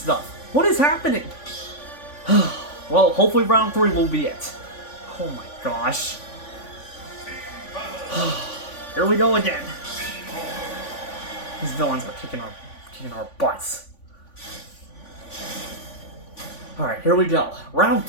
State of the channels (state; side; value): late; right; 3.5 ms